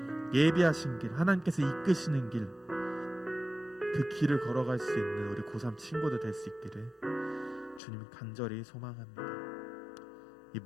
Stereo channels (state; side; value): drops out; right; at 7.8 s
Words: 예비하신 길, 하나님께서 이끄시는 길, 그 길을 걸어갈 수 있는 우리 고3 친구들 될 수 있기를 주님 간절히 소망합니다. 이